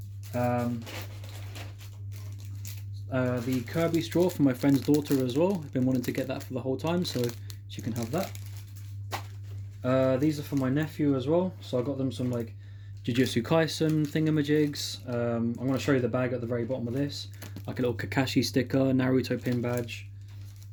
The Kirby straw for my friend's daughter as well. I've been wanting to get that for the whole time, so she can have that. These are for my nephew as well, so I got them some like Jujutsu Kaisen thingamajigs. I'm going to show you the bag at the very bottom of this, like a little Kakashi sticker, Naruto pin badge,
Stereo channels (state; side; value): identical; both; correlation 1.00